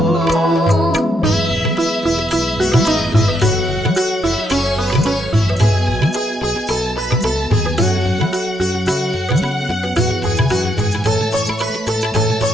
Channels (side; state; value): both; normal; correlation 0.77